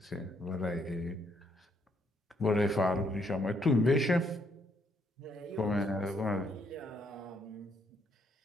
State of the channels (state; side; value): normal; both; correlation 0.72